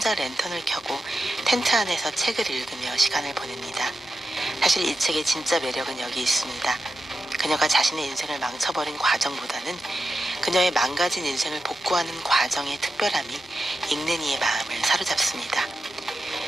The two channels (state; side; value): normal; both; correlation 0.90